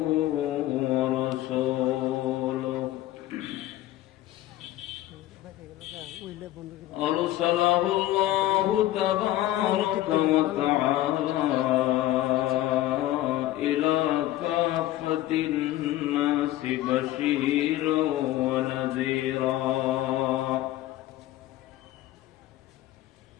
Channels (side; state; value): right; quieter; 14.8 dB